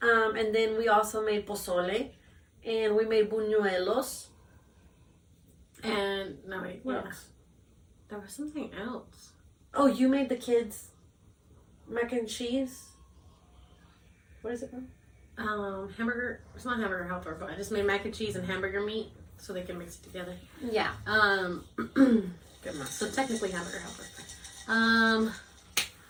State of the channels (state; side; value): identical; both; correlation 1.00